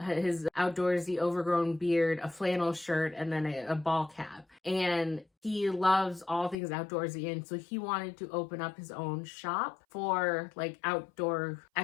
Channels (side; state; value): right; drops out; at 6.6 s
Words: outdoorsy overgrown beard, a flannel shirt, and then a ball cap. And he loves all things outdoorsy, and so he wanted to open up his own shop for like outdoor